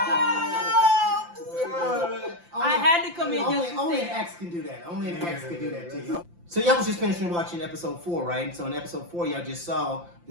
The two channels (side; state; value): left; late; 5.8 ms